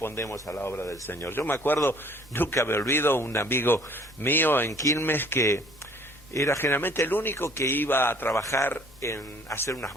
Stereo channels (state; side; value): normal; both; correlation 0.56